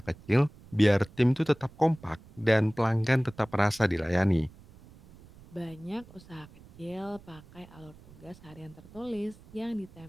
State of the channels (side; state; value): right; noise; rumble, 22 dB below the sound